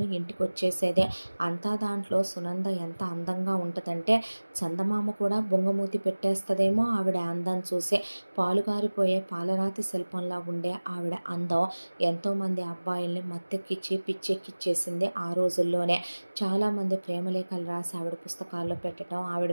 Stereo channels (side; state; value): both; inverted; correlation -1.00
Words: ఇంటికి వచ్చేసేదే. అంతా దాంట్లో సునంద ఎంత అందంగా ఉంటుందంటే చందమామ కూడా బొంగమూతి పెట్టేస్తుందేమో ఆవిడ అందం చూసి. పాలుగారిపోయే పాలరాతి శిల్పంలా ఉండే ఆవిడ అందం ఎంతోమంది అబ్బాయిల్ని మత్తెక్కిచ్చి పిచ్చెక్కిచ్చేసింది ఆ రోజుల్లోనే. చాలామంది ప్రేమలేఖలు రాసి ఆవిడ పుస్తకాల్లో పెట్టడం, ఆవిడ